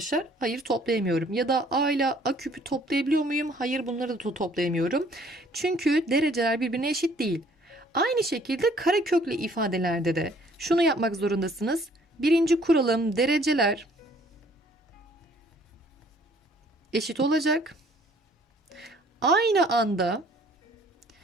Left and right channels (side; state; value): both; normal; correlation 0.59